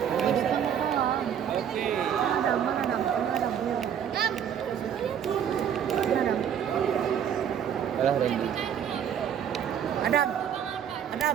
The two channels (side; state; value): left; quieter; 8.8 dB